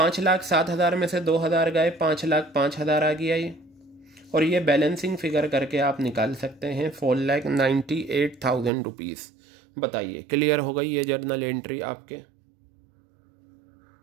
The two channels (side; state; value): left; drops out; at 8.7 s